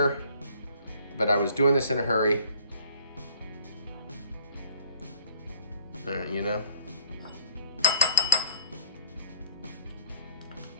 But I was doing this in a hurry. You know?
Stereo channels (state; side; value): inverted; both; correlation -0.54